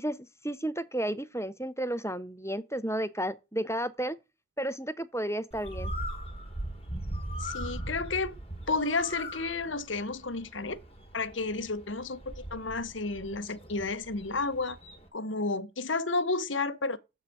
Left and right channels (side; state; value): both; normal; correlation 0.17